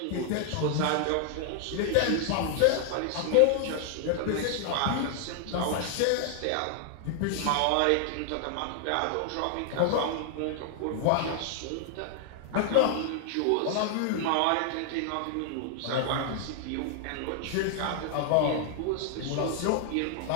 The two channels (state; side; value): different; both; correlation 0.00